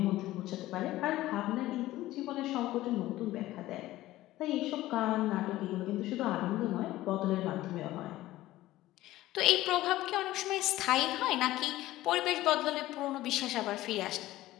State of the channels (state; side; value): quieter; right; 16.1 dB